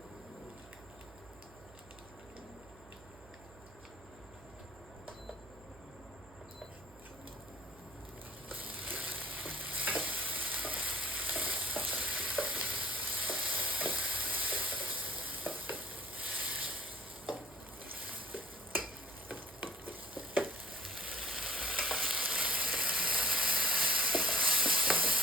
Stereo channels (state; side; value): noise; right; hum, 22 dB below the sound